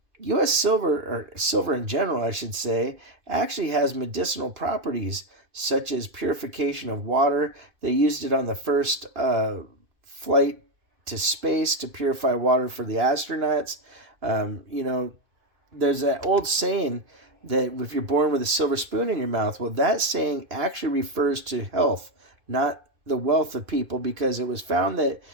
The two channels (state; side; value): late; left; 2.5 ms